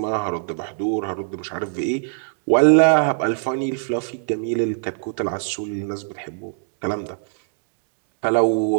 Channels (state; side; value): silent; left; digital silence